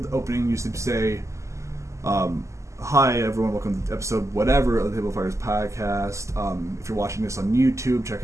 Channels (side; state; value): left; late; 0.14 ms